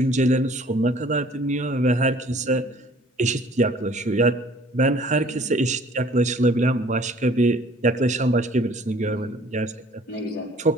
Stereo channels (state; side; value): normal; both; correlation 0.54